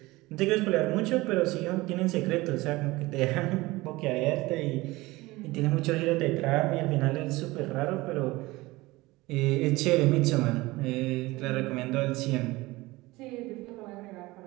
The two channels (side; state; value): left; quieter; 20.6 dB